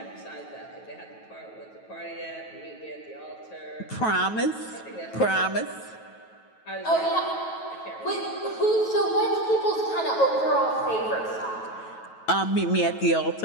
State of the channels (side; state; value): right; late; 9.2 ms